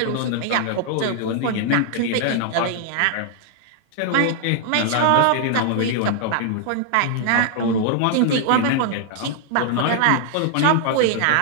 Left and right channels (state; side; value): different; both; correlation 0.00